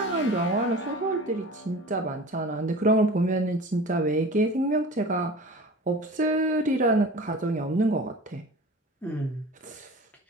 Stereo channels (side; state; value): both; normal; correlation 0.39